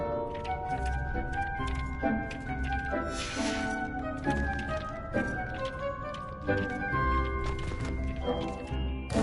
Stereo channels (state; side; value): identical; both; correlation 1.00